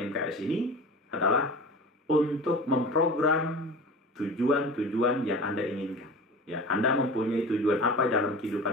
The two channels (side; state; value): both; normal; correlation 0.35